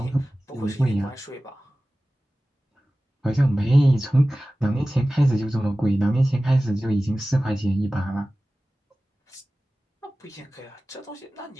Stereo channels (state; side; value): normal; both; correlation 0.97